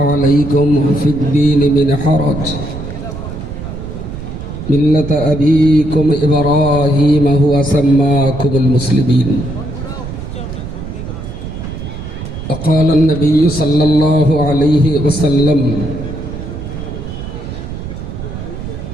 في الدين من حرج ملة أبيكم إبراهيم هو سماكم المسلمين وقال النبي صلى الله عليه وسلم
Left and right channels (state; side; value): noise; right; rumble, 9 dB below the sound